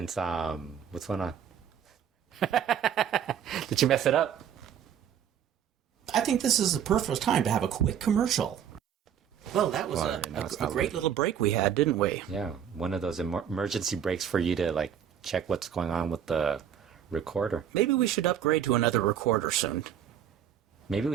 what's going on? Did you mess it up? I think this is the perfect time to have a quick commercial. Well, that was a great little break we had, didn't we? Yeah, one of those emergency breaks for you to, like, check what's going on with the recorder. Maybe we should upgrade to another recorder soon. Maybe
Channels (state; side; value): quieter; left; 9.0 dB